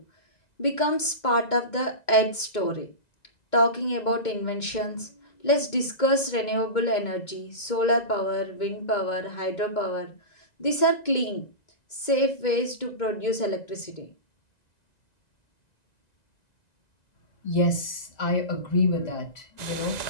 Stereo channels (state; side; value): late; right; 1.9 ms